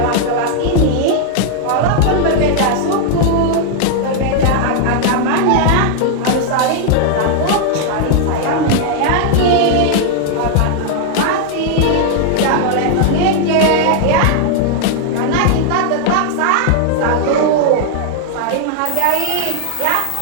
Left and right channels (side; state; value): both; different; correlation 0.00